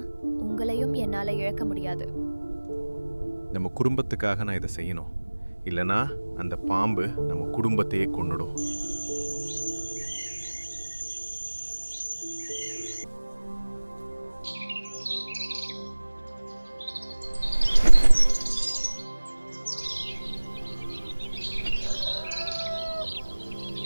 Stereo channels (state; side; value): inverted; both; correlation -1.00